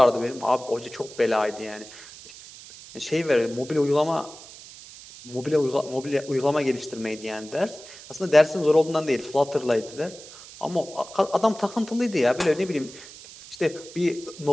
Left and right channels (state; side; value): noise; right; hiss, 17 dB below the sound